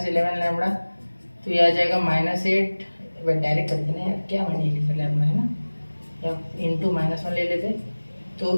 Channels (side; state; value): both; inverted; correlation -1.00